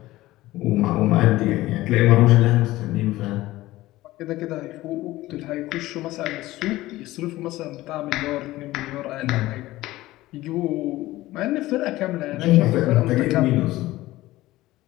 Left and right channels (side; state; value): right; quieter; 17.3 dB